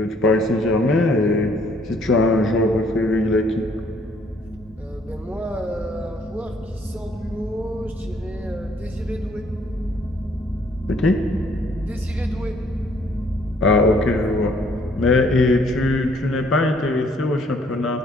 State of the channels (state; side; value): normal; both; correlation 0.63